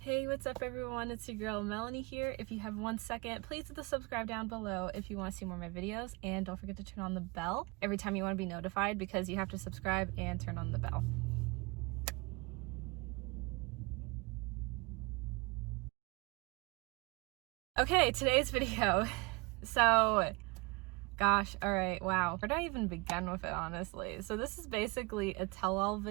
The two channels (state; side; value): quieter; left; 27.1 dB